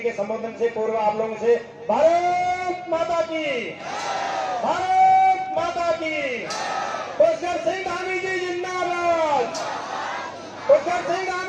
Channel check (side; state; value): both; identical; correlation 1.00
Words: के संबोधन से पूर्व आप लोगों से भारत माता की, भारत माता की, पुष्कर सिंह धामी जी जिंदाबाद, पुष्कर सिंह